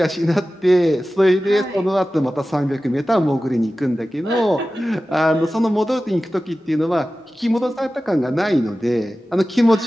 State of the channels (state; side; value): normal; both; correlation 0.95